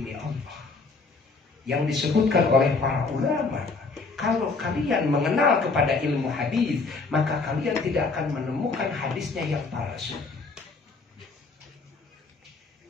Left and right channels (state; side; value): quieter; right; 4.1 dB